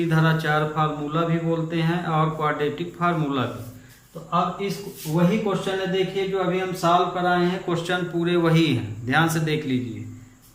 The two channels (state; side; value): identical; both; correlation 1.00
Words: फार्मूला भी बोलते हैं और क्वाड्रेटिक फार्मूला भी। तो अब इस वही क्वेश्चन है, देखिए जो अभी हम सॉल्व कराए हैं, क्वेश्चन पूरे वही हैं, ध्यान से देख लीजिए,